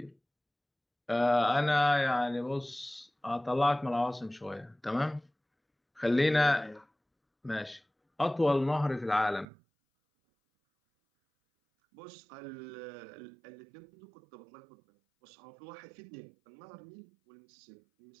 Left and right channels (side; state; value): left; drops out; at 9.5 s